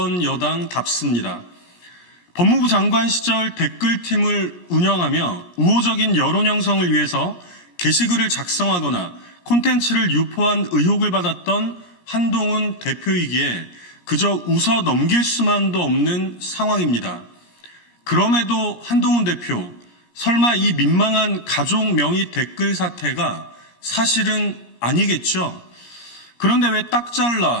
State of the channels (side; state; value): right; late; 17 ms